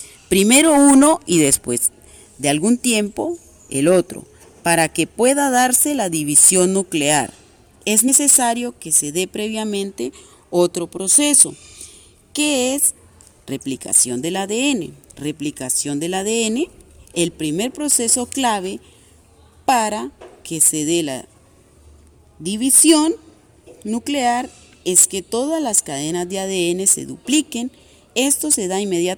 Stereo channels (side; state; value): both; identical; correlation 1.00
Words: Primero uno y después de algún tiempo el otro. Para que pueda darse la división nuclear, es necesario que se dé previamente otro proceso, que es replicación del ADN. Replicación del ADN, el primer proceso clave para que se dé la división nuclear es que todas las cadenas de ADN se dupliquen. Esto se da